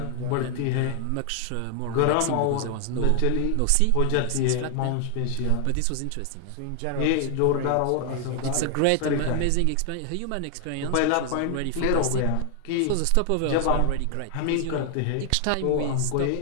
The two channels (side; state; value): both; different; correlation 0.00